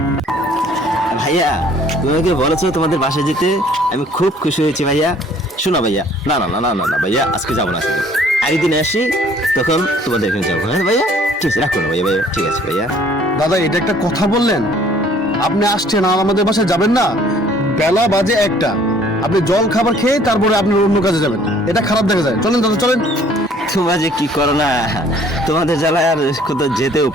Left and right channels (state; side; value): normal; both; correlation 0.57